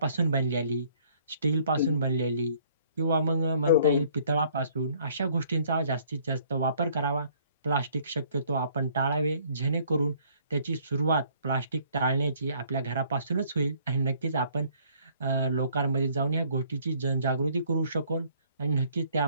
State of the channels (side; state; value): both; inverted; correlation -0.61